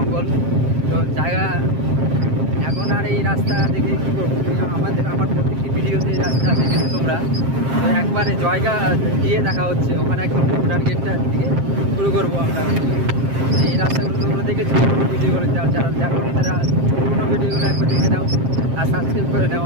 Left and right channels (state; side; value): late; left; 7.5 ms